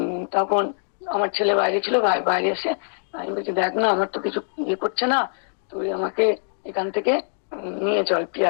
তখন আমার ছেলে বাইরে ছিল, বাইরে এসে আমি বলছি দেখ না আমার তো কিছু ইয়ে করছে না, তুই আমাকে এখান থেকে নিয়ে চল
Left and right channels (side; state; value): right; silent; digital silence